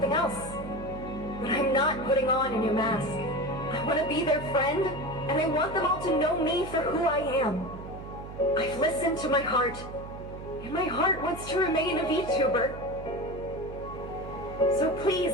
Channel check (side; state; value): right; noise; hum, 12 dB below the sound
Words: else. But I'm not putting on a new mask. I want to be their friend, and I want them all to know me for who I am. I've listened to my heart, and my heart wants to remain a VTuber. So